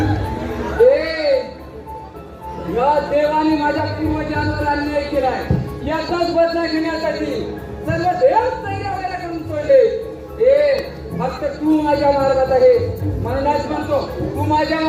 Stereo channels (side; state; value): both; identical; correlation 1.00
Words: या देवाने माझ्या पूर्वजांवर अन्याय केलाय. याचाच बदला घेण्यासाठी सर्व देव तैयार करून सोडले. फक्त तू माझ्या मार्गात आहे म्हणूनच म्हणतो तू माझ्या